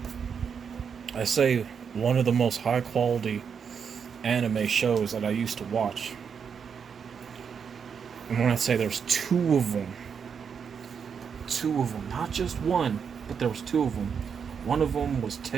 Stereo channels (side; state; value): left; quieter; 6.7 dB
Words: I say one of the most high quality anime shows that I used to watch. And when I say there's two of them, not just one, but there was two of them. One of them was